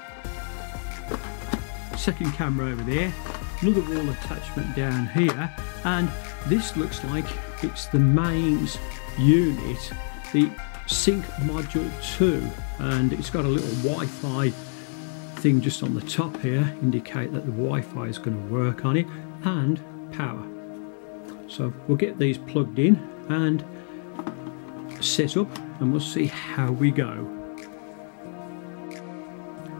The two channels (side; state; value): right; silent; 55 dB below the other